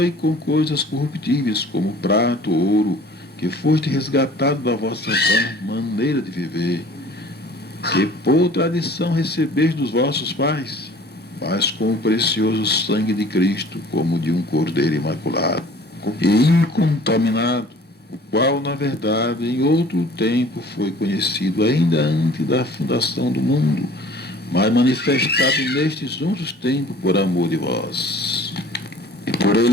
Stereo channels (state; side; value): normal; both; correlation 0.49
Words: com coisas corruptíveis, como prata ou ouro, que foste resgatado da vossa maneira de viver, que por tradição recebeste dos vossos pais, mas com o precioso sangue de Cristo, como de um cordeiro imaculado e incontaminado, o qual, na verdade, em outro tempo foi conhecido ainda antes da fundação do mundo, mas manifestado nestes outros tempos por amor de vós. E por